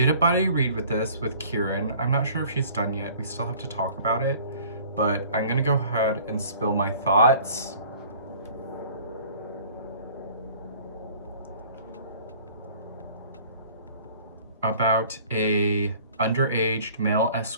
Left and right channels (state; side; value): inverted; both; correlation -0.50